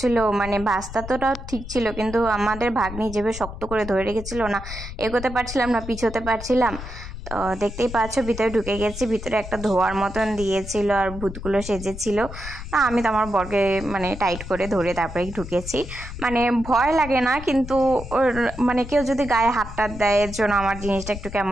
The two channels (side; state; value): left; noise; rumble, 11 dB below the sound